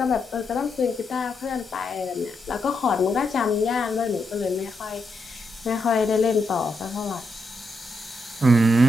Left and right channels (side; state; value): both; normal; correlation 0.82